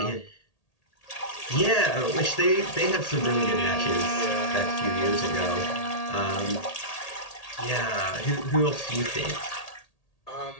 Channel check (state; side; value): late; right; 1.8 ms